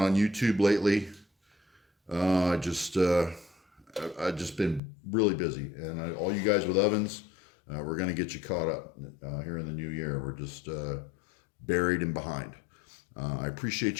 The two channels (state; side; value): drops out; right; at 4.8 s